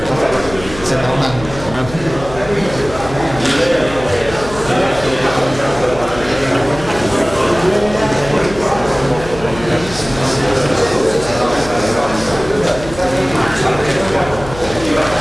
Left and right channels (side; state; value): left; noise; hum, 14 dB below the sound